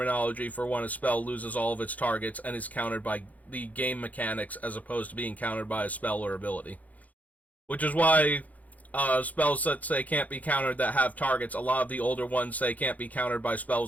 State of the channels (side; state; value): right; late; 0.076 ms